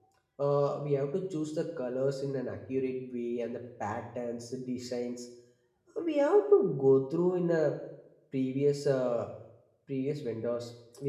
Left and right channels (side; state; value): both; identical; correlation 1.00